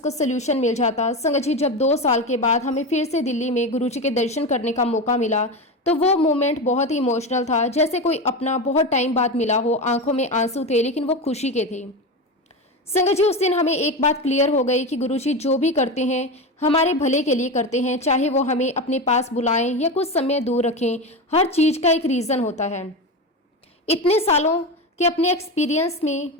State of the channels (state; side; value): normal; both; correlation 0.20